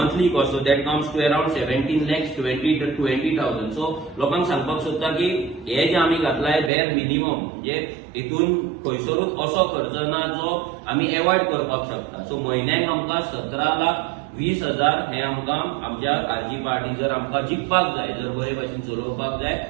cost. So that comes to around 17 lakhs 20,000. सो लोकांक सांगपाक सोदता की हे जे आमी घातलाय बेर मिनिमम म्हणजे हितून खंयसरूच असो खर्च ना जो आमी एवॉयड करपाक शकता. सो म्हयन्याक आमकां 17,20,000 हे आमकां आमच्या आरजी पार्टी जर आमकां जिखपाक जाय जर बरे भशेन चलोवपाक जाय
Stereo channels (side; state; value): left; drops out; at 6.7 s